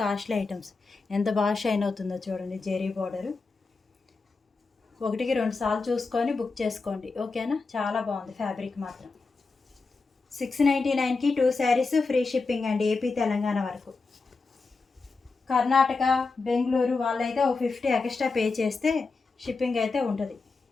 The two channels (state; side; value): quieter; right; 4.1 dB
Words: కాస్ట్లీ ఐటమ్స్, ఎంత బాగా షైన్ అవుతుందో చూడండి. జెరీ బార్డరు. 1కి 2 సార్లు చూసుకొని బుక్ చేసుకోండి, ఓకేనా. చాలా బాగుంది ఫ్యాబ్రిక్ మాత్రం. 699కి 2 శారీస్ ఫ్రీ షిప్పింగ్ అండి, ఏపీ తెలంగాణ వరకు. కర్ణాటక బెంగళూరు వాళ్ళైతే ఒక 50 ఎక్స్ట్రా పే చేస్తే షిప్పింగ్ అయితే ఉంటుంది.